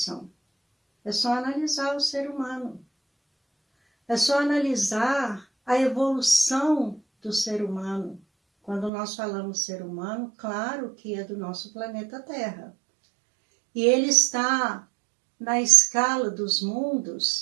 É só analisar o ser humano. É só analisar a evolução do ser humano. Quando nós falamos ser humano, claro que é do nosso planeta Terra. E ele está na escala dos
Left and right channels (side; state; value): left; drops out; at 8.9 s